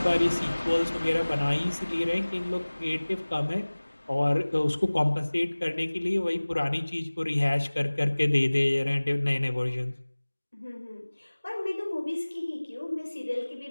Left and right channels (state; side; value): inverted; both; correlation -1.00